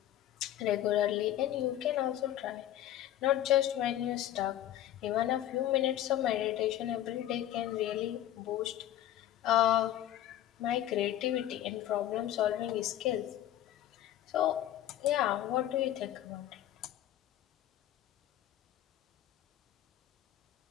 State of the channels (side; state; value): right; quieter; 12.6 dB